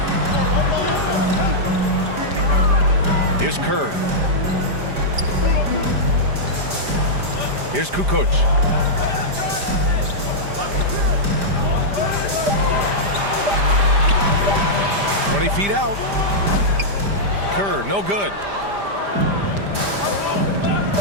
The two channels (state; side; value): late; left; 5.0 ms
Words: Here's Kerr. Here's Kukoc. 20 feet out. Kerr, no good.